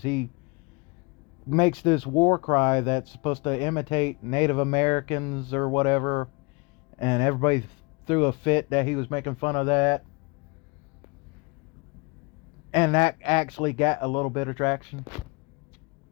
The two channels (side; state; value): right; quieter; 28.3 dB